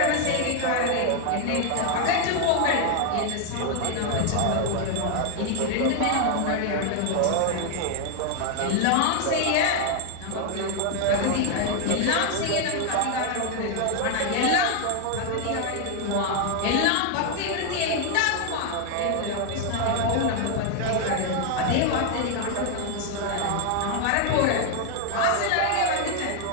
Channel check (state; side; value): different; both; correlation 0.00